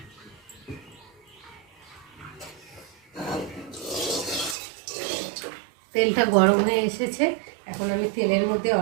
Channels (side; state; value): left; drops out; at 4.5 s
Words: তেলটা গরম হয়ে এসেছে, এখন আমি তেলের মধ্যে